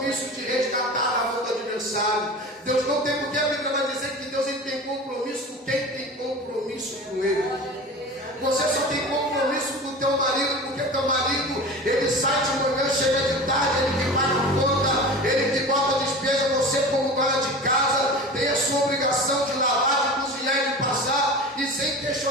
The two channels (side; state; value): both; normal; correlation 0.34